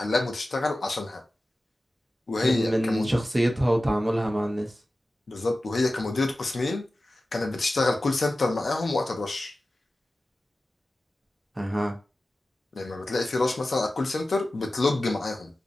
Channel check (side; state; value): both; normal; correlation 0.95